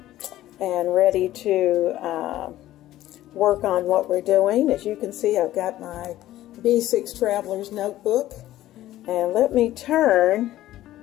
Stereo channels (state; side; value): quieter; right; 14.4 dB